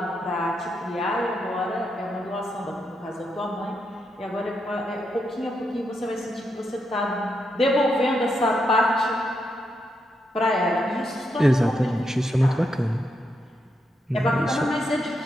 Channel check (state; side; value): normal; both; correlation 0.82